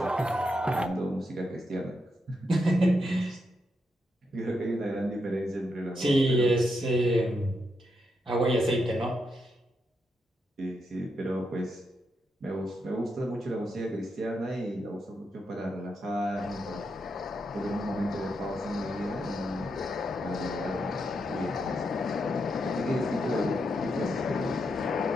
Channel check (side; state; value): both; normal; correlation 0.83